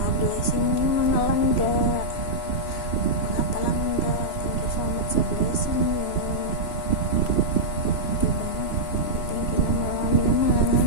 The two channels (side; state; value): right; late; 3.0 ms